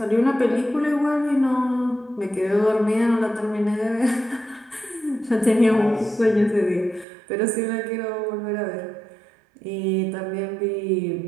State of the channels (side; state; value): left; drops out; at 7.1 s